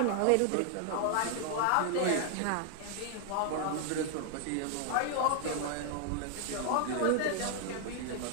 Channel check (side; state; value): both; different; correlation 0.00